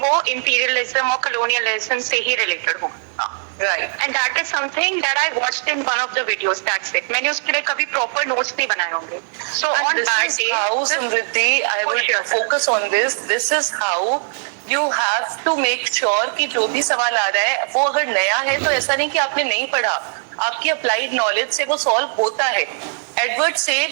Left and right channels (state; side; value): silent; left; 56 dB below the other